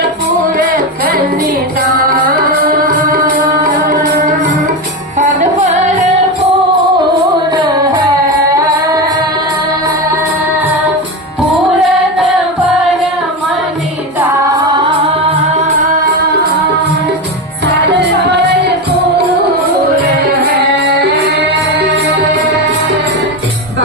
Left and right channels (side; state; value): both; normal; correlation 0.17